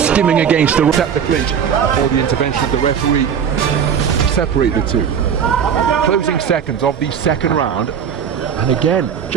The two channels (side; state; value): left; quieter; 7.8 dB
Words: against the clinch before the intervention of the referee to separate the two. Closing seconds of the second round, and again,